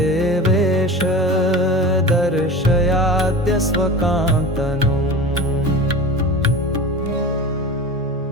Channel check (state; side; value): normal; both; correlation 0.33